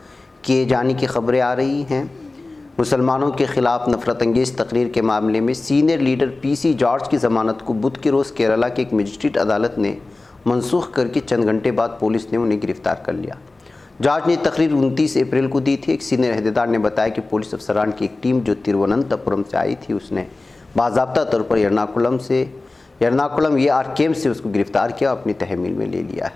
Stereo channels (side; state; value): right; quieter; 3.2 dB